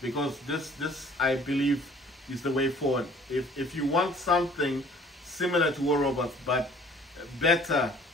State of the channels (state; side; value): normal; both; correlation 0.53